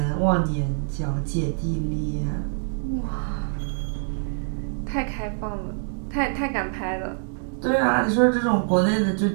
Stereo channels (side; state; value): left; silent; 62 dB below the other